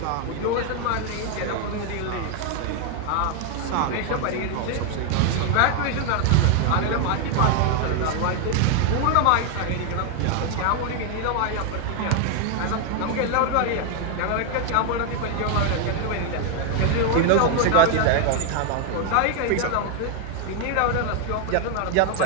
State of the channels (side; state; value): both; different; correlation 0.00